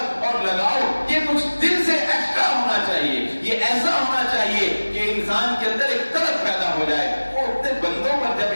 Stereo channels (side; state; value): both; inverted; correlation -1.00